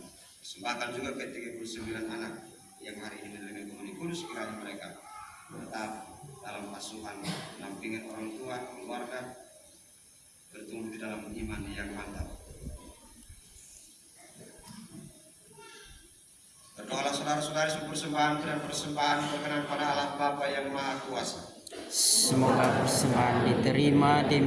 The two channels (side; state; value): both; identical; correlation 1.00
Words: Persembahkan juga ke 39 anak yang hari ini menerima komuni kudus, kiranya mereka tetap dalam asuhan, dampingan orang tua, keluarga, bertumbuh di dalam iman yang mantap. Berdoalah saudara-saudari seluruh persembahan dan persembahan berkenan pada Allah Bapa yang Maha Kuasa. Semoga persembahan diterima